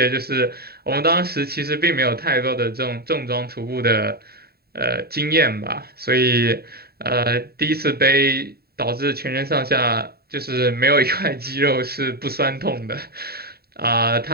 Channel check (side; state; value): left; late; 0.45 ms